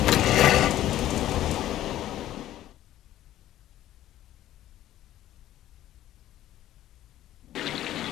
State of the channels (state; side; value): quieter; right; 13.3 dB